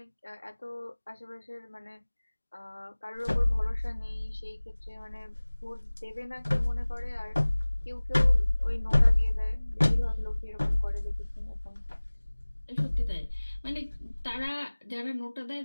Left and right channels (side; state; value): both; inverted; correlation -1.00